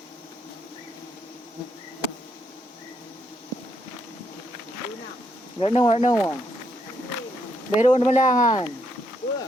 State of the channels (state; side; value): normal; both; correlation 0.76